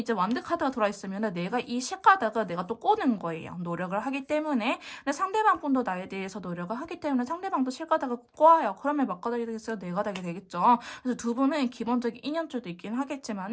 완드 카드가 들어와 있으면 내가 이 실가닥을 내가 또 꼬는 거예요. 노력을 하기 때문에. 근데 상대방 분도 나에 대해서 노력을 하기 때문에 상대방도 실가닥을 꼬아요. 그러면 몇 가닥이 되겠어요? 네 가닥이 되겠죠. 그래서 두 분은 기본적인 인연줄도 있긴 하겠지만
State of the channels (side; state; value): both; identical; correlation 1.00